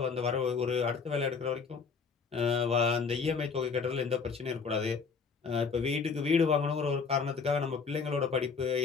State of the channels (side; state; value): right; quieter; 5.3 dB